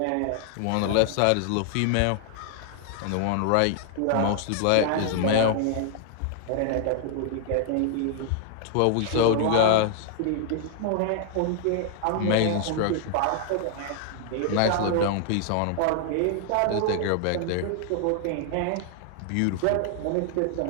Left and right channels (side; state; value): both; different; correlation 0.00